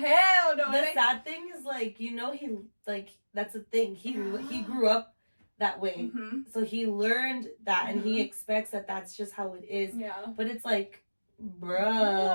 no. The sad thing is, like, you know, he, like, that's the thing. He grew up that way. Mm-hmm. So he learned that, and he expects that that's just how it is. Yeah. But it's like, bruh.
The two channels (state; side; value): inverted; both; correlation -1.00